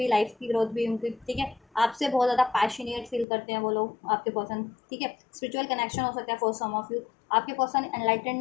लाइफ की ग्रोथ भी उनकी। ठीक है, आपसे बहुत ज़्यादा पैशनेट फील करते हैं वो लोग आपके पर्सन। ठीक है, स्पिरिचुअल कनेक्शन हो सकता है फॉर सम ऑफ यू, आपके पर्सन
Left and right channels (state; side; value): drops out; right; at 3.2 s